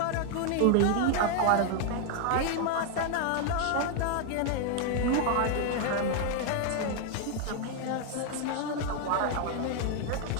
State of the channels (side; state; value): both; different; correlation 0.00